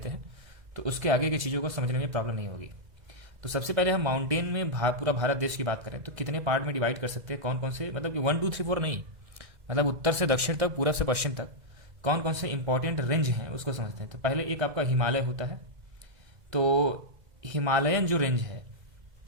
हैं तो उसके आगे की चीज़ों को समझने में प्रॉब्लम नहीं होगी। तो सबसे पहले हम माउंटेन में पूरा भारत देश की बात करें तो कितने पार्ट में डिवाइड कर सकते हैं, कौन कौन से, मतलब कि 1 2 3 4 नहीं, मतलब उत्तर से दक्षिण तक, पूरब से पश्चिम तक कौन कौन से इंपॉर्टेंट रेंज हैं उसको समझते हैं। तो पहले एक आपका हिमालय होता है। तो हिमालयन जो रेंज है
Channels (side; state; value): left; late; 2.0 ms